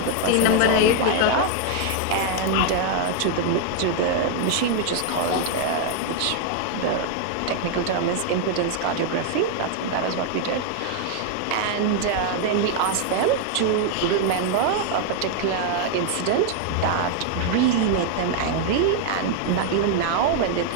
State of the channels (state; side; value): different; both; correlation 0.00